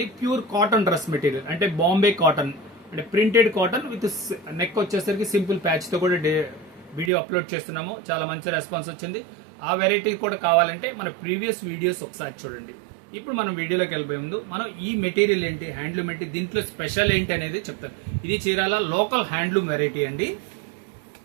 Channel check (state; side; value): drops out; left; at 7.1 s